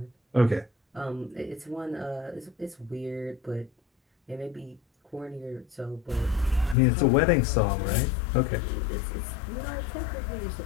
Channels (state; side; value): drops out; right; at 6.8 s